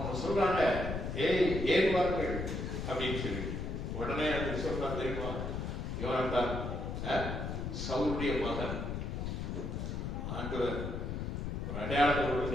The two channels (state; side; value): noise; left; rumble, 3 dB below the sound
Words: சொல்றாங்க, ஏறுவார்கள் அப்படின்னு சொல்லி. உடனே அந்த சொல்றாங்க தெரியுமா? யோனத்தான் சவுலுடைய மகன். ஆண்டவர் ஒரு அடையாளத்தை